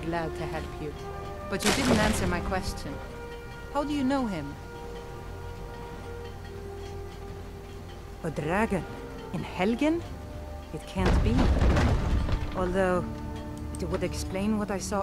to help you. But you didn't answer my question. How do you know him? A dragon? In Helgen? It can't be. Although... it would explain what I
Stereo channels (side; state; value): both; identical; correlation 1.00